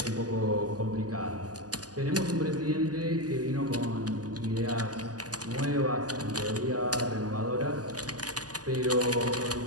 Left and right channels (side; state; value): left; late; 0.68 ms